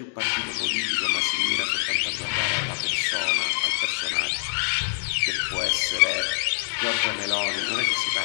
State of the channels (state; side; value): silent; right; 61 dB below the other